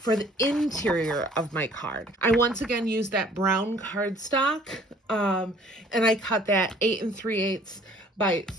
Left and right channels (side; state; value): both; normal; correlation 0.55